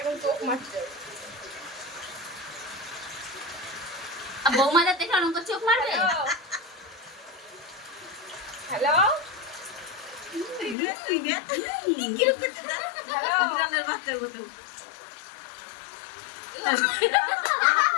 চোখ মারছে বৌমাদের দেখে অনেক চোখ মারবে। হ্যালো হ্যালো বাচ্চার মতো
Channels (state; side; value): drops out; right; at 10.8 s